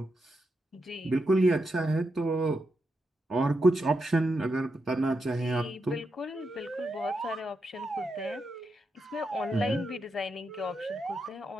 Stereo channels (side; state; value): both; normal; correlation 0.85